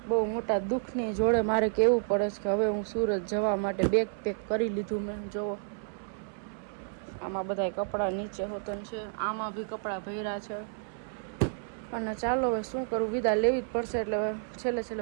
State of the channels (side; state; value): left; silent; 57 dB below the other